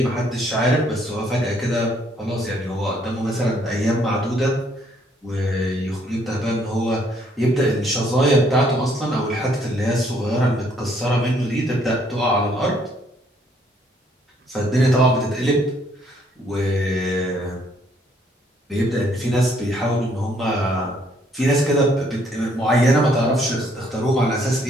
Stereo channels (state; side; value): normal; both; correlation 0.67